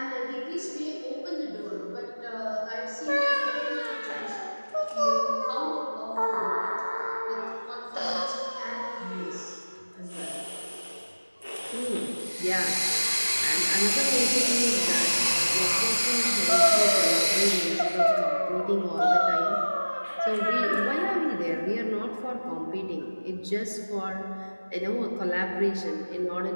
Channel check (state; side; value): inverted; both; correlation -1.00